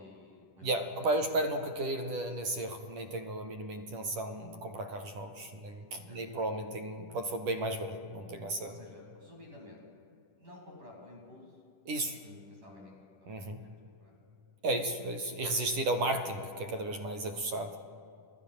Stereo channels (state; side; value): late; left; 10 ms